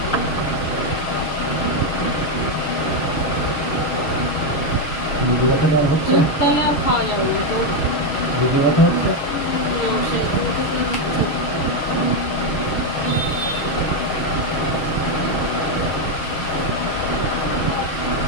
বুঝে ব্যথাটা আর হচ্ছে? তাহলে আর খাওয়া যাবে না তো। বুঝে ব্যথা হচ্ছে? সেরকম কিছু হচ্ছে না।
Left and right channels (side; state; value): right; late; 6.7 ms